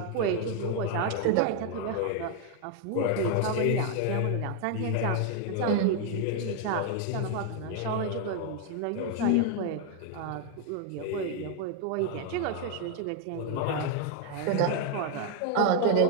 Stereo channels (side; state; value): both; different; correlation 0.00